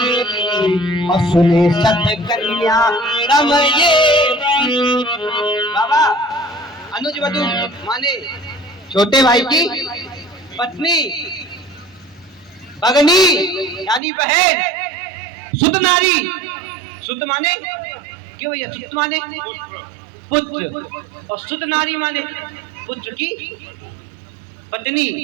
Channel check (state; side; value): drops out; left; at 14.0 s